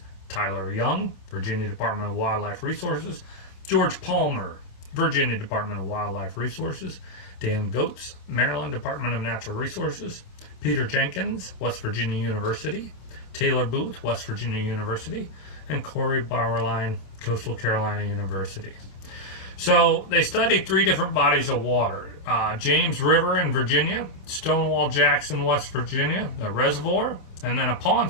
Tyler Young, Virginia Department of Wildlife Resources, George Palmer, Virginia Department of Wildlife Resources, Dan Goetz, Maryland Department of Natural Resources, Peter Jenkins, West Virginia University, Taylor Booth, West Virginia University, and Corey Bauerlein, Coastal Carolina University. So they studied 3 different bodies of water. James River in Virginia, Stonewall Jackson, West Virginia, the reservoir, and then a pond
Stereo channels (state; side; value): late; right; 27 ms